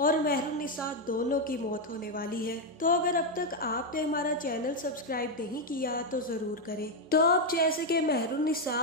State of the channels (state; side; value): normal; both; correlation 0.03